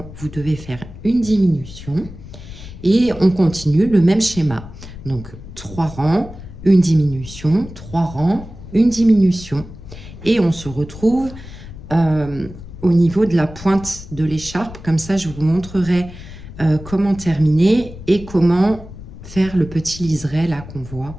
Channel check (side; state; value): left; noise; rumble, 15 dB below the sound